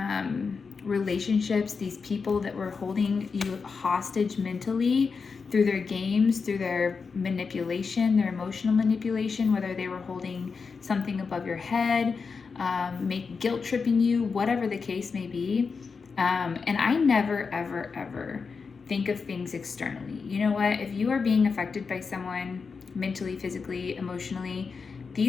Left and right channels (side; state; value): right; quieter; 5.1 dB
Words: relationships, these people that were holding you hostage mentally through their games, through their manipulation, their emotional manipulation, whether they were holding something above your head, guilt tripping you, whatever the case may be. And I never, ever, ever think of things externally. You know what? If you are being affected by someone mentally, physically, emotionally,